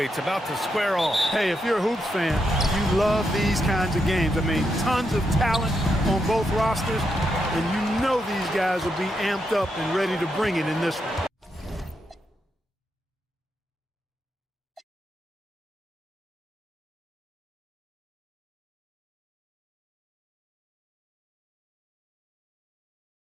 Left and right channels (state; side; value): normal; both; correlation 0.82